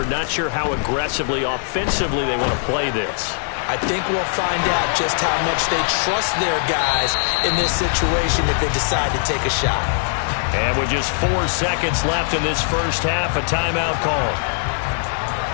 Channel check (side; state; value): right; silent; digital silence